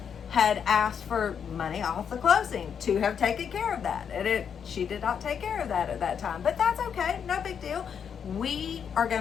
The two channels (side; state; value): right; quieter; 7.4 dB